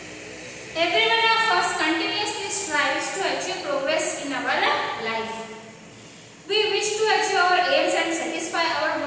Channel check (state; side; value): identical; both; correlation 1.00